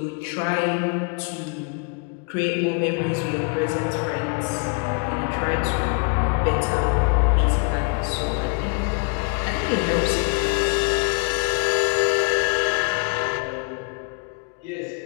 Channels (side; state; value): right; quieter; 34.7 dB